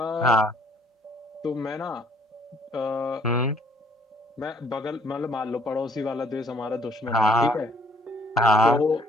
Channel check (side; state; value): both; normal; correlation 0.62